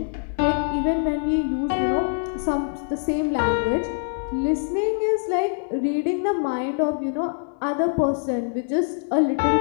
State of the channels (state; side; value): silent; right; digital silence